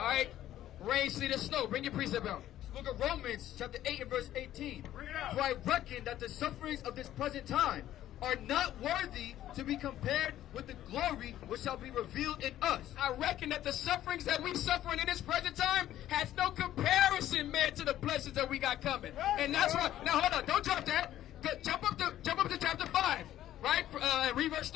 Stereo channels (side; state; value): right; quieter; 12.8 dB